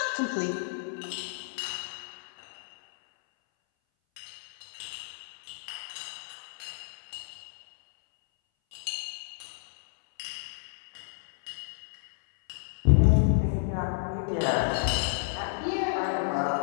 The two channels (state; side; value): silent; right; 57 dB below the other